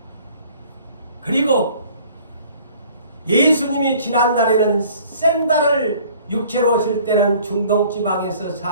그리고 예수님이 지난날에는 샌달을 육체로 오실 때는 중동지방에서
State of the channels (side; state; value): both; inverted; correlation -0.53